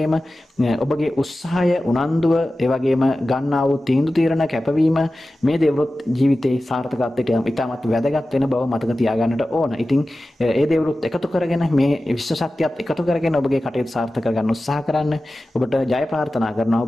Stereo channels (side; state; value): both; normal; correlation 0.95